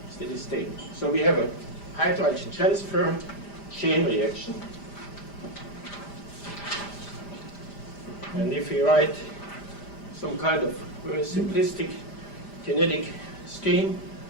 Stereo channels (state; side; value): late; right; 5.0 ms